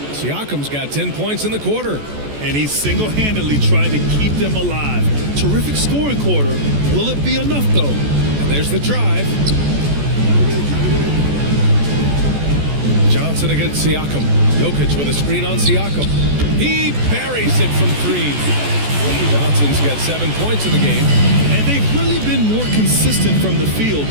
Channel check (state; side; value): late; left; 14 ms